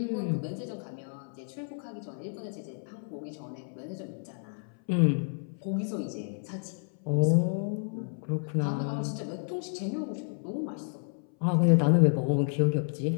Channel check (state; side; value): silent; right; 57 dB below the other